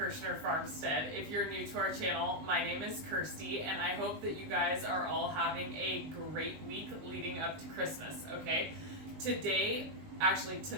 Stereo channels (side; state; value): left; late; 19 ms